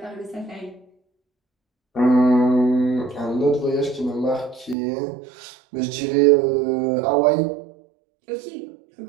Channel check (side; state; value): left; drops out; at 4.8 s